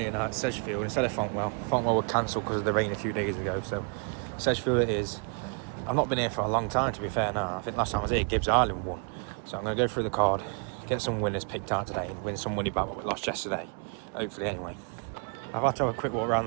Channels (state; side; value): quieter; left; 40.0 dB